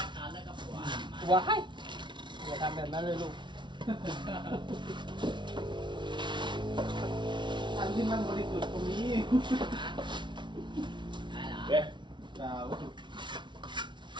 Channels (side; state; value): left; late; 0.23 ms